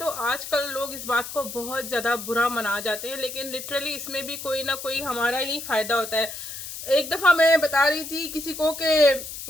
आजकल लोग इस बात को बहुत ज़्यादा बुरा मना जाते हैं, लेकिन लिटरली इसमें भी कोई ना कोई हमारा ही फ़ायदा होता है। एक दफ़ा मैं बता रही थी किसी को कि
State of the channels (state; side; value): noise; left; hiss, 9 dB below the sound